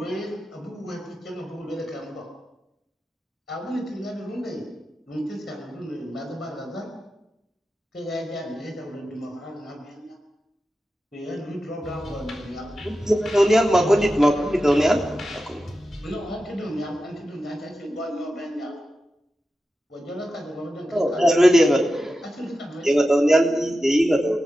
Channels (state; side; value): normal; both; correlation 0.92